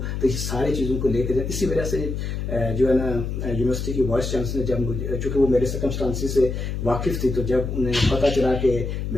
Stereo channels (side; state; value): left; noise; hum, 3 dB below the sound